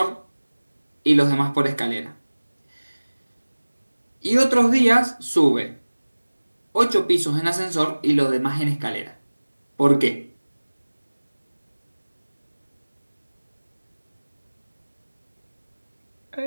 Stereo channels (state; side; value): inverted; both; correlation -1.00